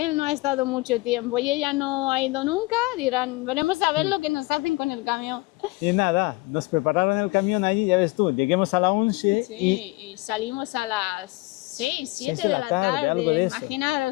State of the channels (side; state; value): right; quieter; 23.3 dB